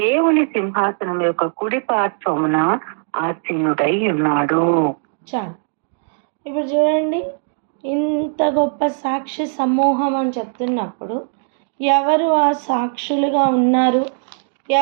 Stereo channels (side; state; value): left; silent; 64 dB below the other